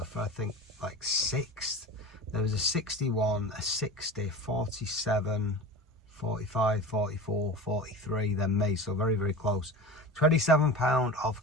for, I think, like 6th. There was a 61, a 60, 47, 45, 44, 43, then me, so very, very close. 27 pound of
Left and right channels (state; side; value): normal; both; correlation 0.31